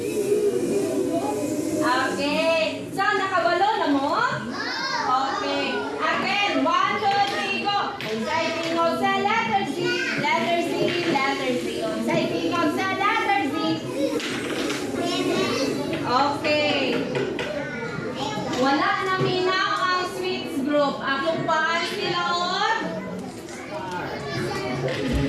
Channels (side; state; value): both; identical; correlation 1.00